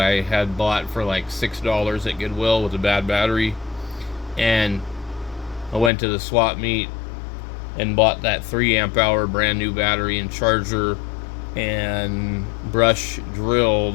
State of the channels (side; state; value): right; drops out; at 5.9 s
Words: had bought for like $6 at Goodwill with a bad battery. And I went to the swap meet and bought that 3 amp hour brand new battery and charger and brush drill